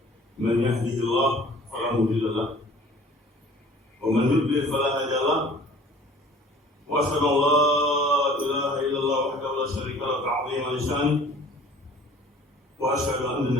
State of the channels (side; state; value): both; normal; correlation 0.50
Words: من يهده الله فلا مضل له ومن يضلل فلا هادي له، وأشهد أن لا إله إلا الله وحده لا شريك له تعظيما لشانه، وأشهد أن